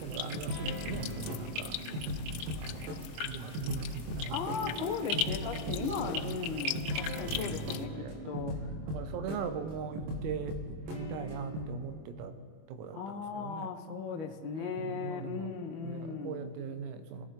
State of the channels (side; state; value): left; late; 25 ms